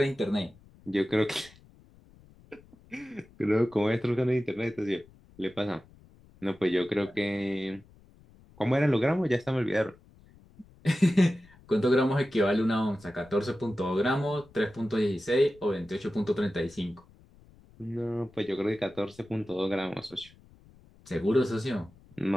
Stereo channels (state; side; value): noise; left; rumble, 26 dB below the sound